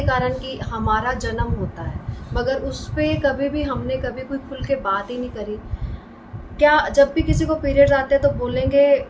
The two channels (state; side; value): identical; both; correlation 1.00